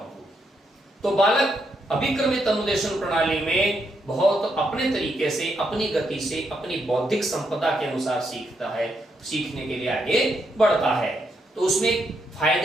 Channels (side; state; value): both; normal; correlation 0.79